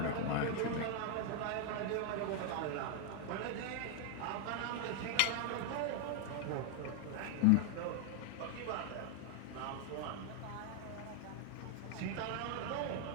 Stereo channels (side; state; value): both; different; correlation 0.00